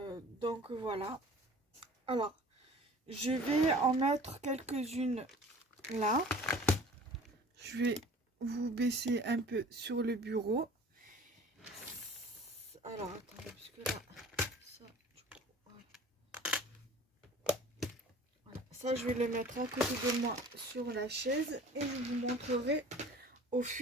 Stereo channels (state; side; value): normal; both; correlation 0.46